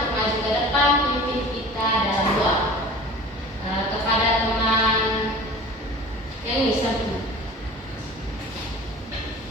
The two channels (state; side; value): normal; both; correlation 0.41